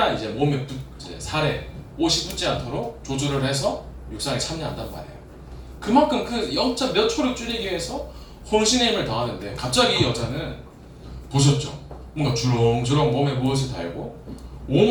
이제 몸에 이제 살에 옷이 붙지 않도록 조절을 해서 육상에 참여한단 말이에요. 그만큼 그 0. 몇 초를 줄이기 위해서 혼신의 힘을 다하는데 갑자기 이 여자는 보셨죠? 뭔가 주렁주렁 몸에 무엇을 달고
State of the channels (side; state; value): both; identical; correlation 1.00